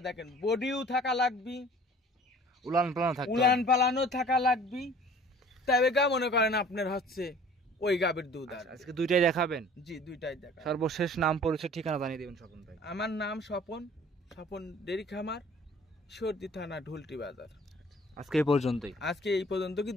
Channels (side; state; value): both; normal; correlation 0.49